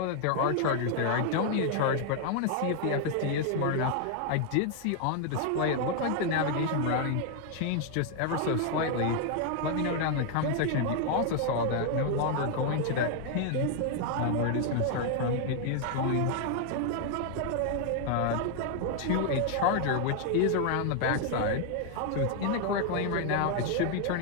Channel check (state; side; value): different; both; correlation 0.00